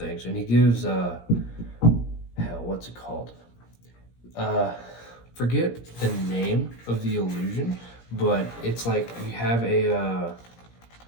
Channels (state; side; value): late; right; 17 ms